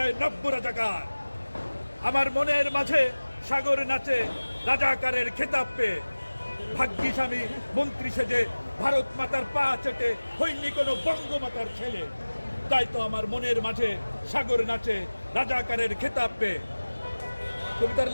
নব্য রাজাকার, আমার মনের মাঝে সাগর নাচে রাজাকারের খেতাব পেয়ে। ভাগ্যিস আমি মন্ত্রী সেজে ভারত মাতার পা চেটে হইনি কোনো বঙ্গমাতার ছেলে, তাই তো আমার মনের মাঝে সাগর নাচে রাজাকারের খেতাব পেয়ে। কবিতার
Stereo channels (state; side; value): inverted; both; correlation -1.00